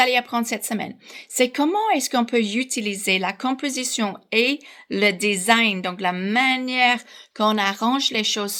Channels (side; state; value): both; identical; correlation 1.00